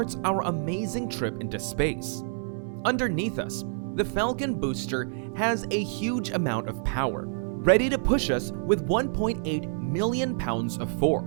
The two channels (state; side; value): silent; left; 60 dB below the other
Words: our amazing trip into space. Underneath us, the Falcon booster has a huge amount of power, ready to push us with 1.8 million pounds of